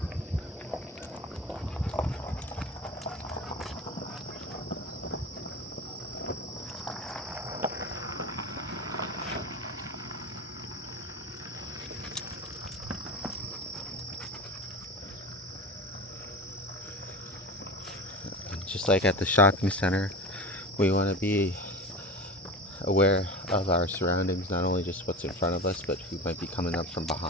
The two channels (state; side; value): normal; both; correlation 0.30